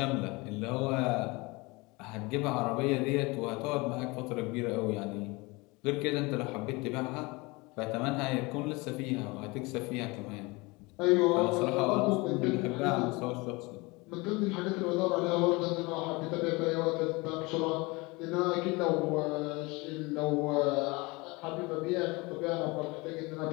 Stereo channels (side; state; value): right; quieter; 24.9 dB